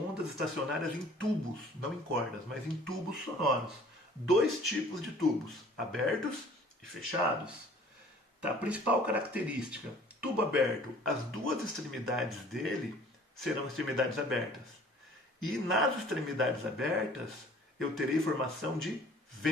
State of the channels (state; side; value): normal; both; correlation 0.51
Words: estacionárias em tubos, não em cordas, mas em tubos sonoros. Dois tipos de tubos, abertos e fechados. Tá? A principal característica, tubo aberto, as duas extremidades dele serão extremidades abertas. E nas extremidades abertas, eu terei formação de